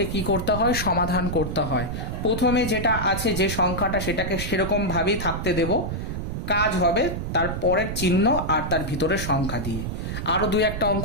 কি করতে হয়, সমাধান করতে হয়। প্রথমে যেটা আছে যে সংখ্যাটা সেটাকে সেরকমভাবেই থাকতে দেব, কাজ হবে তার পরের চিহ্ন আর তার ভিতরের সংখ্যা দিয়ে। আরও 2-1টা অঙ্ক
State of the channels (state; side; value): noise; right; rumble, 4 dB below the sound